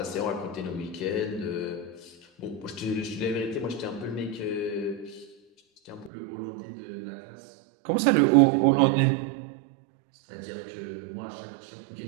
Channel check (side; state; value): left; drops out; at 6.1 s